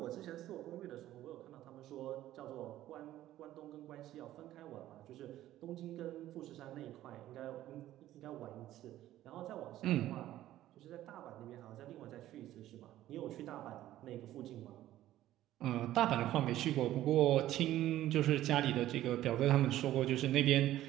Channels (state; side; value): quieter; left; 13.9 dB